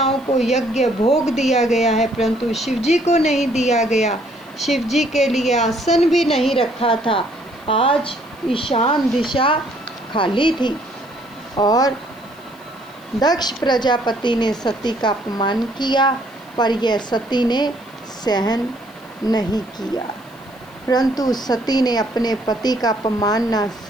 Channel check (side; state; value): left; noise; hiss, 28 dB below the sound